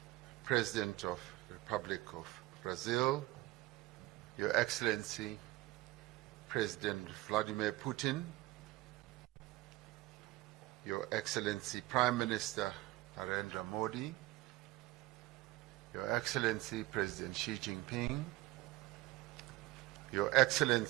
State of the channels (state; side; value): quieter; left; 18.5 dB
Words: President of the Republic of Brazil, Your Excellency President Vladimir Putin, Your Excellency Prime Minister Narendra Modi, Your Excellency President Xi Jinping, Your